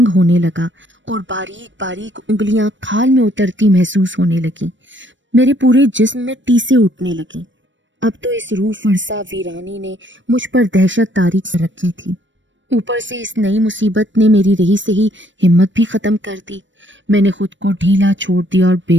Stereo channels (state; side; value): late; left; 0.55 ms